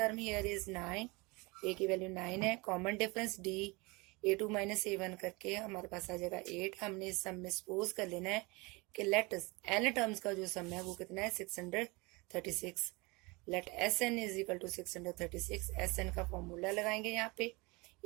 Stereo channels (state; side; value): quieter; left; 25.8 dB